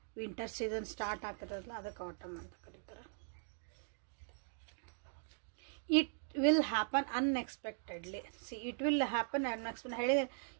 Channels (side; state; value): left; silent; digital silence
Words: ವಿಂಟರ್ ಸೀಸನ್ ಸ್ಟಾರ್ಟ್ ಆಗ್ತದಲ್ಲ, ಅದಕ್ಕೆ ಆಟಮ್ ಅಂತ ಕರೀತಾರೆ. It will happen unexpectedly. It will happen unexpected ಹೇಳಿದೆ.